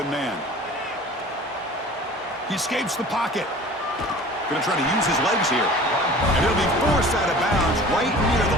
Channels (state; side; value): normal; both; correlation 0.43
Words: man. He escapes the pocket. Going to try to use his legs here. And he'll be forced out of bounds right near